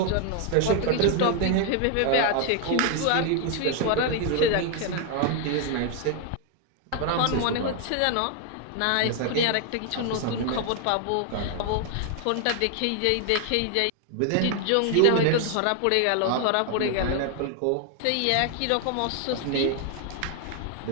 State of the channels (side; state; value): both; different; correlation 0.00